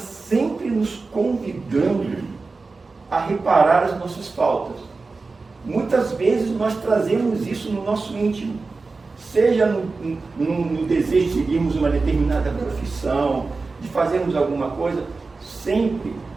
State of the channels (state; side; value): quieter; left; 4.0 dB